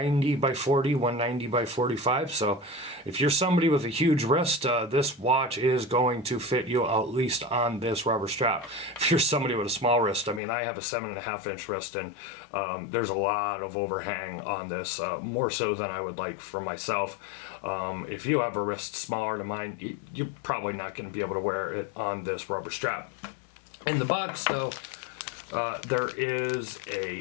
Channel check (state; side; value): drops out; right; at 10.4 s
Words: by 40, 190 by 45. So if you're somebody with a huge wrist, this watch is going to fit you at least on this rubber strap. If you're somebody with a small wrist, I mean, I have a 7.5-inch wrist, and there's a lot of overhang on this, more so than I would like for myself. If you have a wrist smaller than mine, you're probably not going to be able to wear it on this rubber strap. In the box, though, there is